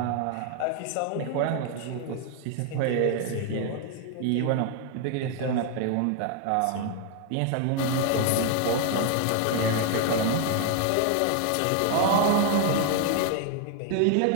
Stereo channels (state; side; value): different; both; correlation 0.00